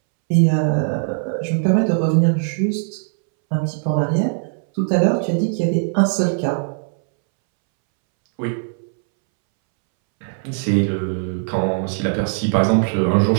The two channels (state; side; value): silent; left; 65 dB below the other